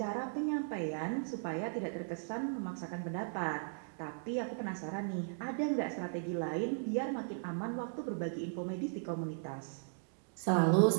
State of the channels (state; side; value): silent; left; digital silence